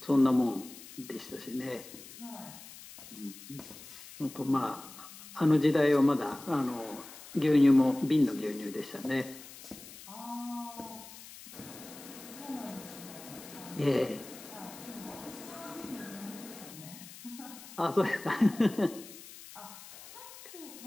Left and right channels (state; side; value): noise; left; hiss, 16 dB below the sound